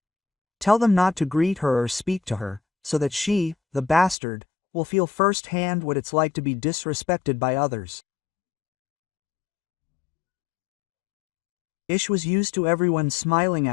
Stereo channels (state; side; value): drops out; right; at 4.2 s